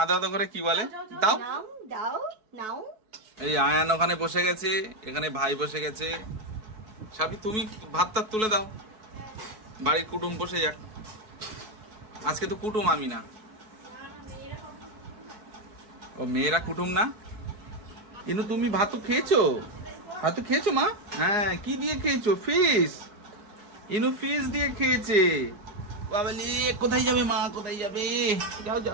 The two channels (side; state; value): left; late; 4.6 ms